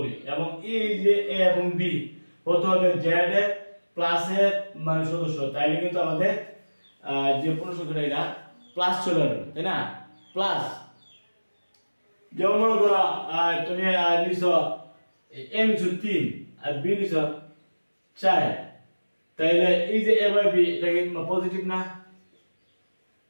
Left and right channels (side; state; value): both; inverted; correlation -1.00